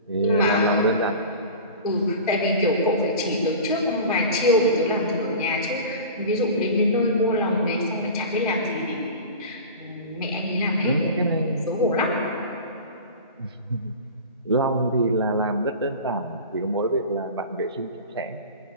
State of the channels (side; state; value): both; inverted; correlation -0.35